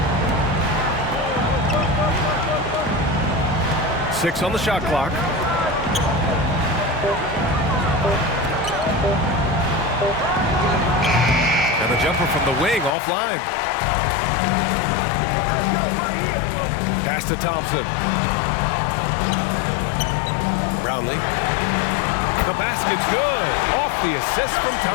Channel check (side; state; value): right; drops out; at 12.9 s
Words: Six on the shot clock. And the jumper from the wing offline. Pass to Thompson. Brownlee. The basket's good. Off the assist from